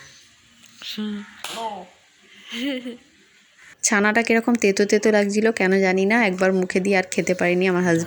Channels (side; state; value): both; identical; correlation 1.00